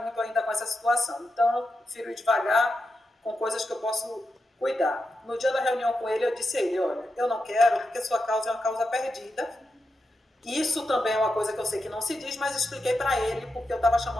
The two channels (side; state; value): both; normal; correlation 0.88